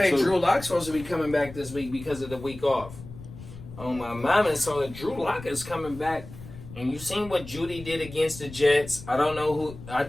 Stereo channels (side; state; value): left; noise; rumble, 15 dB below the sound